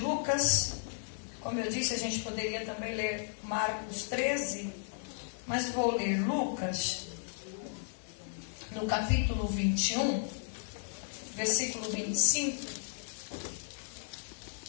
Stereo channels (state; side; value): silent; right; digital silence